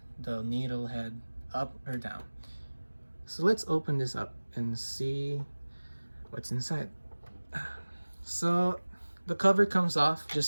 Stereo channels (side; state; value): both; inverted; correlation -1.00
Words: the needle head up or down. So let's open this up and see what's inside. So the cover comes off,